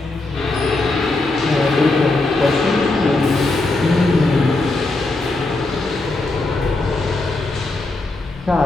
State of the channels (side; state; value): right; quieter; 3.0 dB